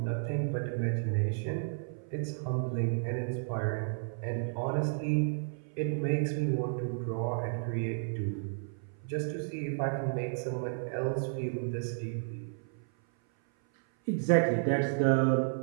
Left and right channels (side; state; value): left; silent; 56 dB below the other